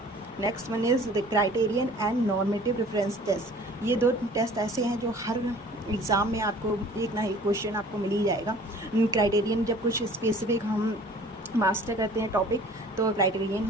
Next one is the criterion and normative reference test. ये दो टेस्ट ऐसे हैं जो हर एग्ज़ाम में आपको एक ना एक क्वेश्चन आपको मिल ही जाएगा. क्राइटेरियन जब कुछ स्पेसिफिक हम मास्टर करते हैं टॉपिक तो क्राइटेरियन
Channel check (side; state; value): both; normal; correlation 0.49